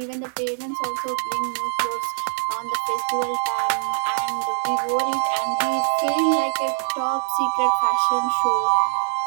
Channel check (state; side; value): silent; left; digital silence